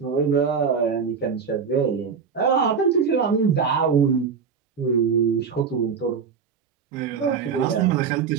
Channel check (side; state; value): left; quieter; 6.2 dB